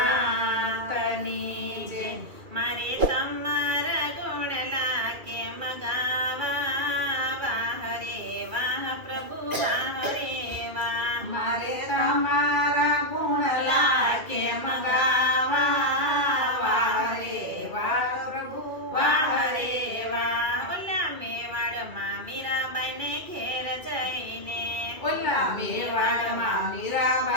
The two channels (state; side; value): late; left; 2.6 ms